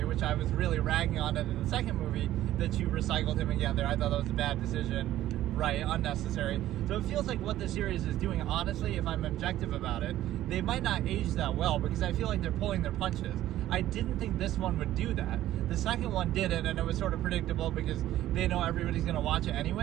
which I was really ragging on it in the second movie, that you recycled him again there. I thought that was a bad decision, right? Unnecessary. So it feels like what the series is doing, honestly, if I'm objective about it, they might not age that well, because I feel like they're pulling their punches. I didn't think this one would do that. The second one did it, and it was sort of predictable because they know everybody's going to watch it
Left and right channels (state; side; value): quieter; left; 13.7 dB